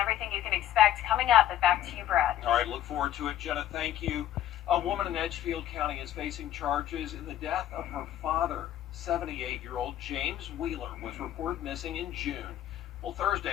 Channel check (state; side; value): quieter; right; 12.0 dB